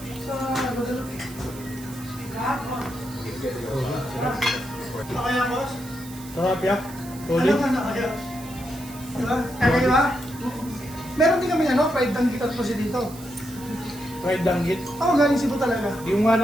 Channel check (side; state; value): right; noise; hiss, 17 dB below the sound